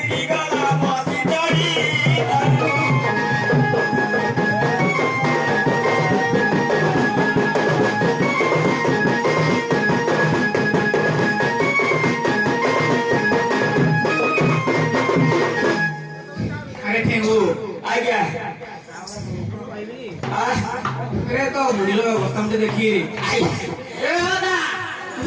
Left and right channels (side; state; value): both; identical; correlation 1.00